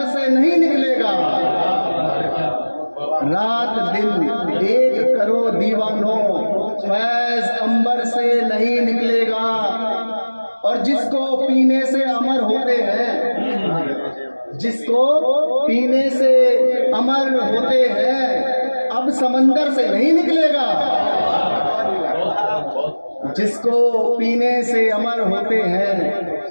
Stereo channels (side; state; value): both; inverted; correlation -1.00